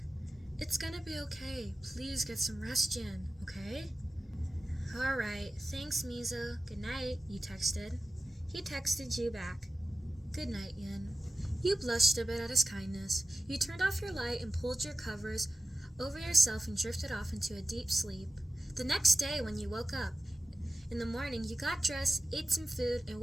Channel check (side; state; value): both; normal; correlation 0.94